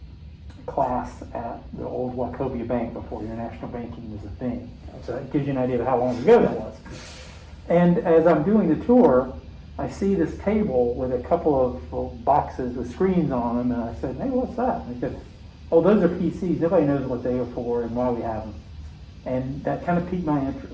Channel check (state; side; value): identical; both; correlation 1.00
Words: class at the old Wachovia Bank before international banking was a thing. So that gives you an idea of how long ago that was. And as I'm doing the tour, I see this table with a couple of boxes with screens on them, and I said, "Hey, what's that?" And they said, "Oh, those are PCs. Nobody knows what they are for and why we have them." And that kind of piqued my